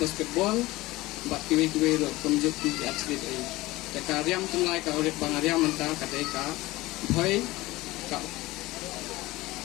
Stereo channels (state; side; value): quieter; right; 19.4 dB